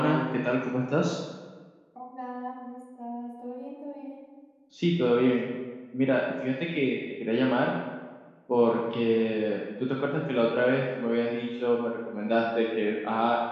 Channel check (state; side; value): identical; both; correlation 1.00